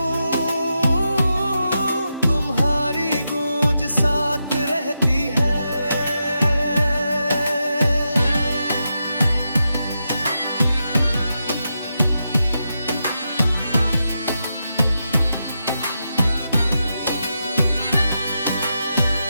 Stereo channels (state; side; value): inverted; both; correlation -0.86